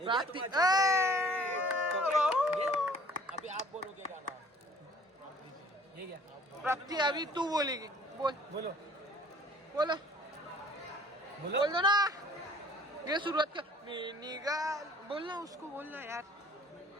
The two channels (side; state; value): both; normal; correlation 0.53